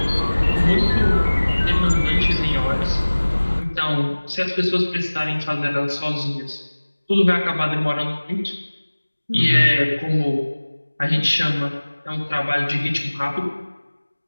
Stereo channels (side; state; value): both; inverted; correlation -1.00